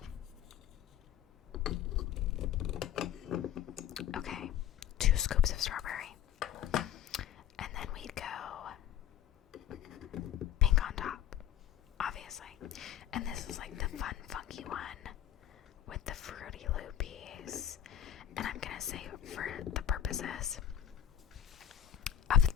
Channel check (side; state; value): right; quieter; 10.3 dB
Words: Okay, 2 scoops of strawberry. And then we'd go pink on top, obviously. And this is like the fun, funky one with the Fruity Loopies. And I'm gonna say, for the purposes of